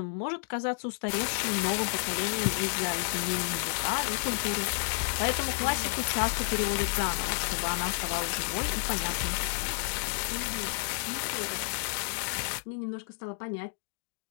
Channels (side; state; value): right; silent; digital silence